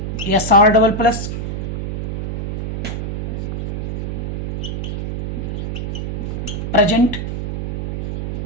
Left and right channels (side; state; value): right; noise; hum, 2 dB below the sound